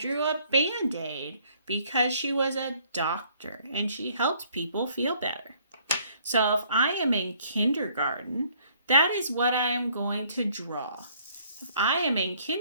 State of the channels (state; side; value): inverted; both; correlation -0.62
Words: a Band-Aid because she was a doctor and she helped people feel better. So if I am in kindergarten, that is what I am going to draw. If I am in